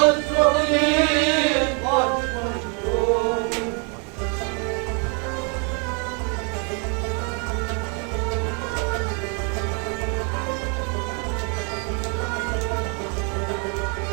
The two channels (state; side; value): quieter; left; 37.1 dB